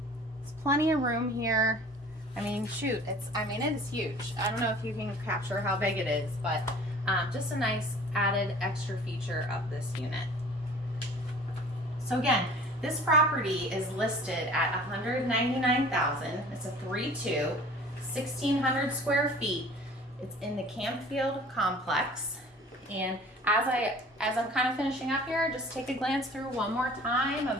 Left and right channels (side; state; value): both; normal; correlation 0.47